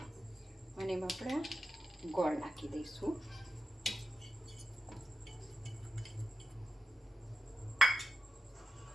અને એમાં આપણે ગોળ નાખી દઈશું.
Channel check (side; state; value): both; normal; correlation 0.89